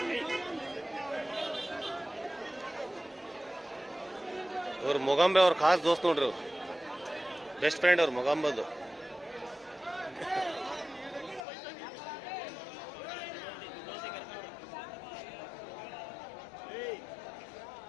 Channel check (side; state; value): right; drops out; at 11.4 s